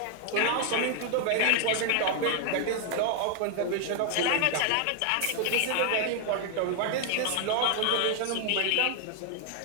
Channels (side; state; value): both; different; correlation 0.00